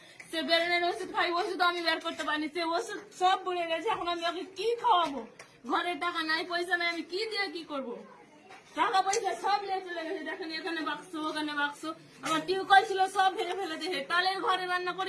সে বেরেনের ওষুধ খাই, ওষুধ আমি বের করতে পারিনি। সে ওষুধ সব বলে গেছে। এখন আমি ওকে কি খাওয়াবো? ঘরে টাকা নাই, পয়সা নাই, আমি কি দিয়ে কি করবো? টাকা পয়সা সব নিয়ে চলে গেছে। দেখেন, এখানে বাক্স, ওখানে বাক্স। আমার টিউবকল ছিল, সব ভেঙে ফেলে দিয়েছে। তালের ঘরে রান্না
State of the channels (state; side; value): identical; both; correlation 1.00